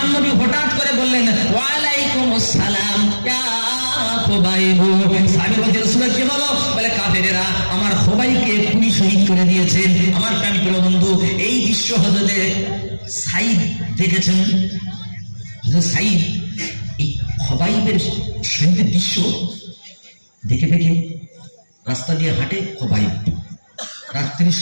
নবী হঠাৎ করে বললেন, ওয়ালাইকুম আসসালাম ইয়া খোবাইব। সাহাবী বলছে, রাসূলুল্লাহ কি হলো? বলে, কাফেরেরা আমার খোবাইবকে খুনি শহীদ করে দিয়েছে। আমার প্রাণী প্রিয় বন্ধু, এই দৃশ্য হযরতে সাঈদ দেখেছেন। হযরত সাঈদ এই খোবাইবের শহীদের দৃশ্য দেখে দেখে রাস্তা দিয়ে হাঁটে খোবাইব, রাত্রি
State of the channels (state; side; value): inverted; both; correlation -1.00